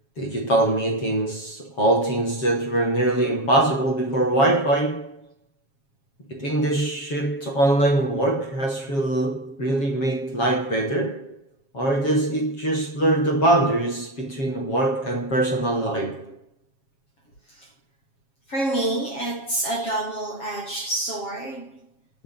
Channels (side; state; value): right; late; 7.3 ms